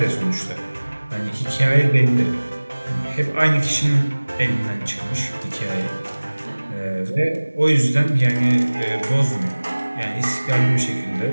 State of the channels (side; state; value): both; inverted; correlation -1.00